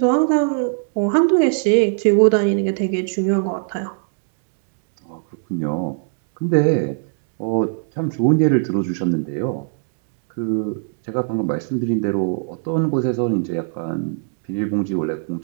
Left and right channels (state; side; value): silent; left; 66 dB below the other